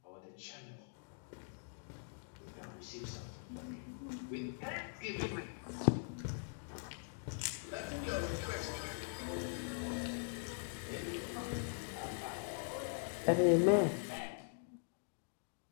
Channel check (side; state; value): right; silent; digital silence